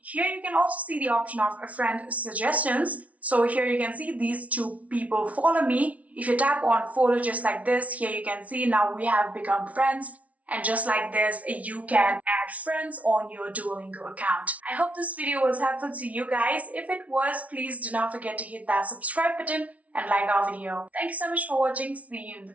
Here you can also see the option of a friend suggestions. So here you can see these 2 people follow me. If you tap on follow just like this, here you can see now we have become friends. And just like this, you can add friends on your Duolingo account. I hope this video was helpful to you guys. If it was, please do not forget to hit that subscribe button and like our video. Thank you so much for watching. See you in the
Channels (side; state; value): left; late; 0.067 ms